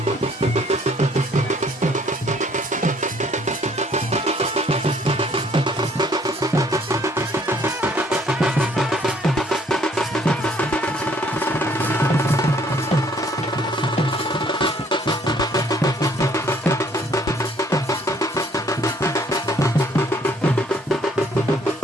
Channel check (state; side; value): normal; both; correlation 0.62